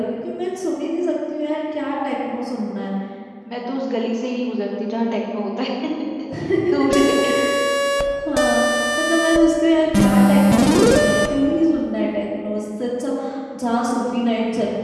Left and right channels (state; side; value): identical; both; correlation 1.00